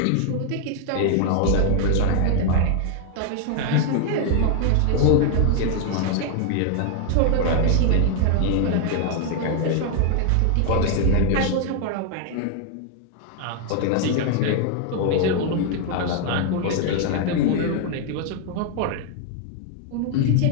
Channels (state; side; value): different; both; correlation 0.00